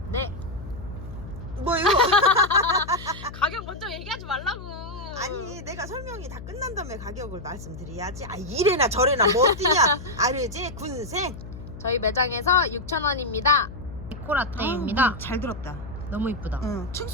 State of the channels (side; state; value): left; noise; hum, 12 dB below the sound